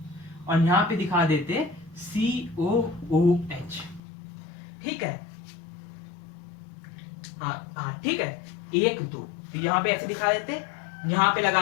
और यहां पे दिखा देते COOH, ठीक है। हाँ ठीक है, 1 2, तो यहां पे ऐसे दिखा देते, यहां पे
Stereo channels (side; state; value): right; drops out; at 4.0 s